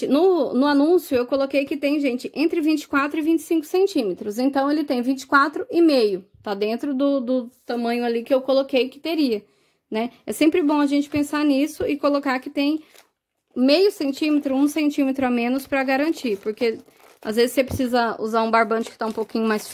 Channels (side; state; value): both; identical; correlation 1.00